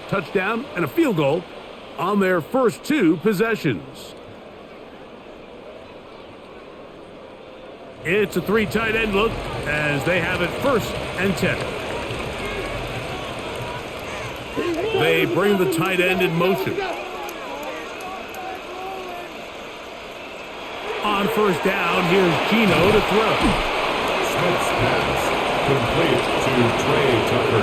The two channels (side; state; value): both; identical; correlation 1.00